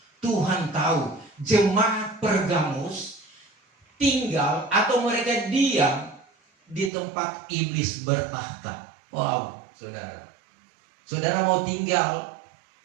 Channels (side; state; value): left; drops out; at 6.9 s